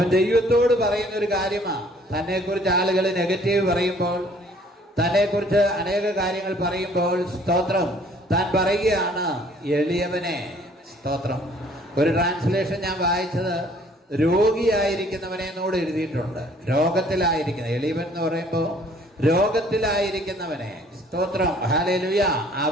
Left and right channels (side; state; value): both; normal; correlation 0.58